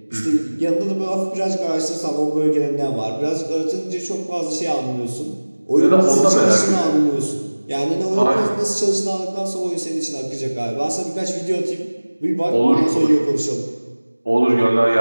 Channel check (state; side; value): inverted; both; correlation -1.00